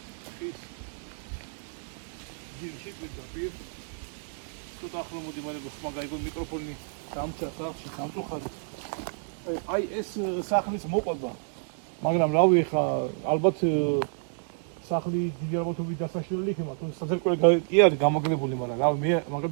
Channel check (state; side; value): silent; left; digital silence